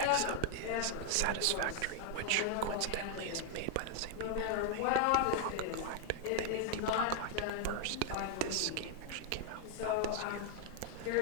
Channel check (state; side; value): different; both; correlation 0.00